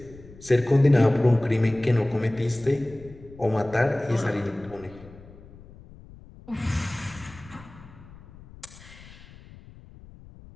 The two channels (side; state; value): left; noise; rumble, 20 dB below the sound